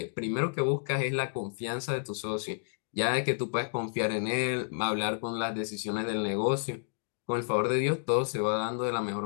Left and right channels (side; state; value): right; silent; digital silence